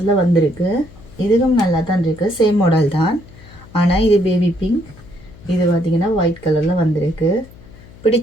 வந்திருக்கு. இதுவும் நல்லா தான் இருக்குது. சேம் மாடல் தான். ஆனால் இது பேபி பிங்க். இது பார்த்தீங்கன்னா ஒயிட் கலரில் வந்திருக்கு.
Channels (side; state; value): left; noise; hum, 21 dB below the sound